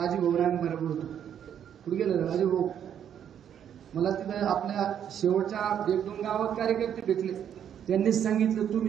होतो. कुठे गेलं राजूभाऊ? मला तिथं आपल्या शेवटच्या 1-2 गावात कार्यकर्ते भेटले. त्यांनीच सांगितलं,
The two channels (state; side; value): quieter; left; 9.2 dB